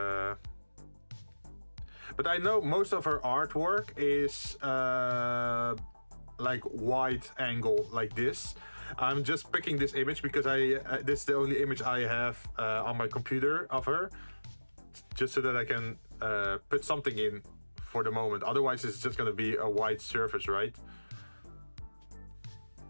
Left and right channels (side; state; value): both; inverted; correlation -1.00